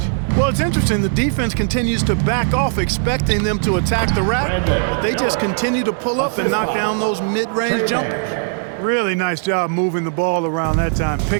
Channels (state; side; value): silent; left; digital silence